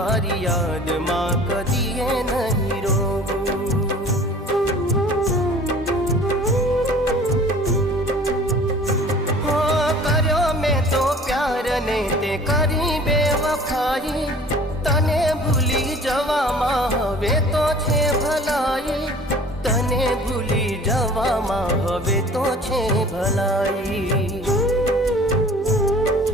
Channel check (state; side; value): normal; both; correlation 0.48